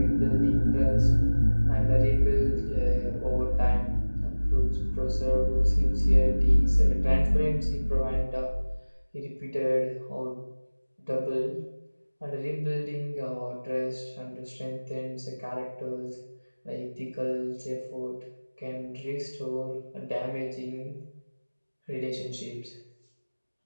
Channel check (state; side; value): inverted; both; correlation -1.00